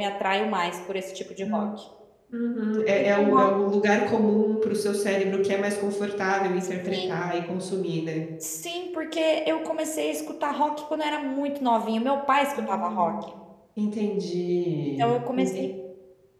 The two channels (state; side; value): identical; both; correlation 1.00